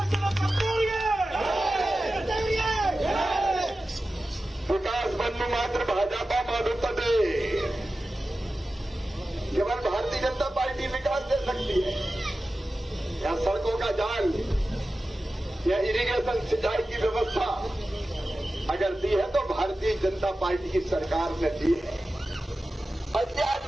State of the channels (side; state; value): both; normal; correlation 0.94